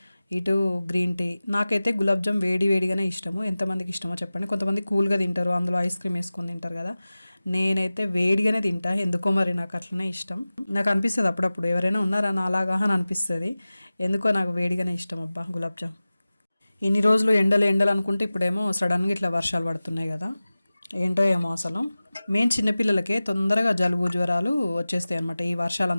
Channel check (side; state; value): both; inverted; correlation -0.97